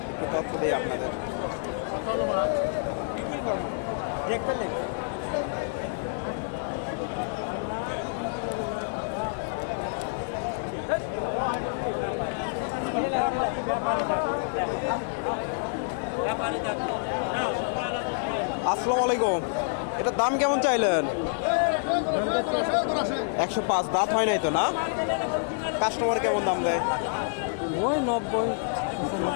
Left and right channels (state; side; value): silent; right; 60 dB below the other